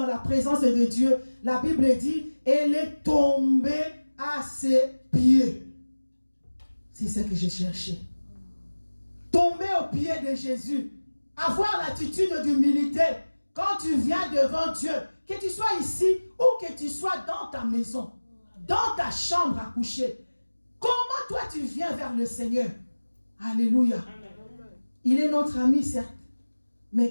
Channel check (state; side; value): inverted; both; correlation -1.00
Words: la présence de Dieu. La Bible dit, elle est tombée à ses pieds. C'est ce que j'ai cherché. Tomber aux pieds de Jésus. Avoir l'attitude d'humilité. Quand tu viens devant Dieu, que tu sois ici ou que tu sois dans ta maison, dans ta chambre à coucher, comment toi tu viens vers le Seigneur? Alléluia. Il est notre ami, certes,